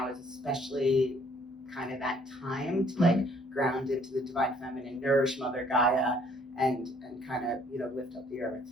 is especially kind of that time to like ground into the divine feminine, nourish Mother Gaia, and kind of lift up the earth.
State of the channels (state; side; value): normal; both; correlation 0.62